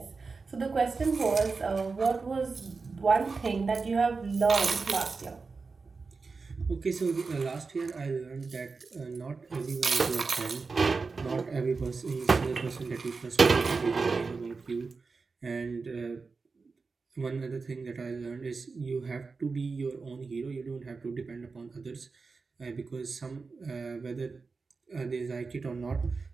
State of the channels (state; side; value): quieter; left; 4.4 dB